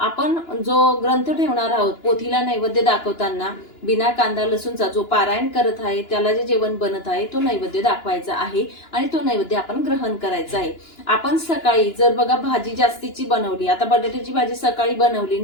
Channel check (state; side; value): late; right; 2.9 ms